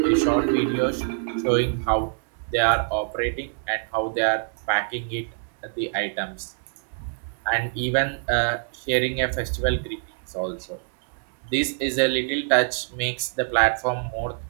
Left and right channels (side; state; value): left; silent; digital silence